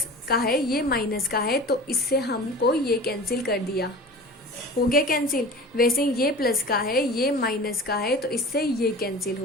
का है ये माइनस का है, तो इससे हमको ये कैंसिल कर दिया, हो गया कैंसिल। वैसे ये प्लस का है ये माइनस का है, तो इससे ये कैंसिल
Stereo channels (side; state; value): both; normal; correlation 0.37